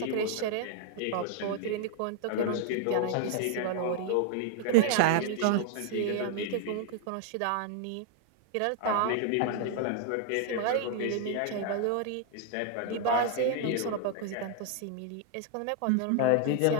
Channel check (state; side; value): different; both; correlation 0.00